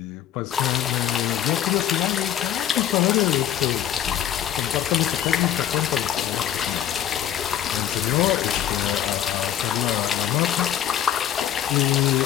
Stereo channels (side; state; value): right; quieter; 10.7 dB